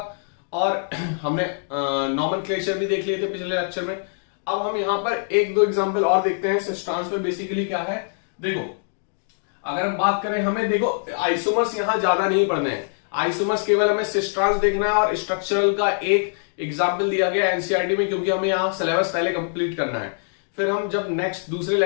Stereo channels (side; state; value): right; silent; digital silence